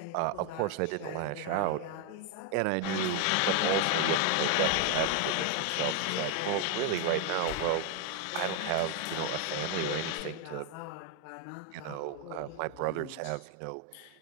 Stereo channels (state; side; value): different; both; correlation 0.01